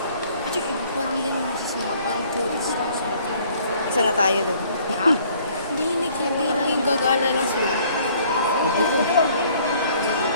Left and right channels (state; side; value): inverted; both; correlation -0.59